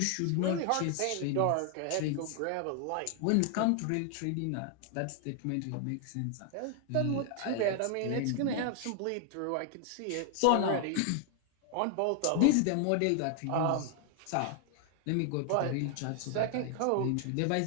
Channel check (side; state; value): both; different; correlation 0.00